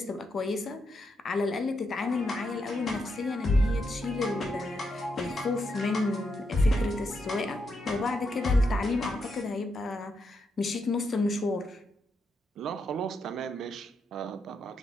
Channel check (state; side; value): normal; both; correlation 0.82